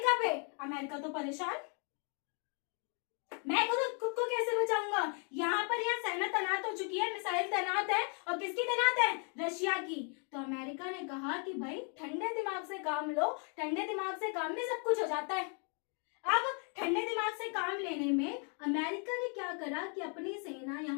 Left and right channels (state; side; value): quieter; right; 39.7 dB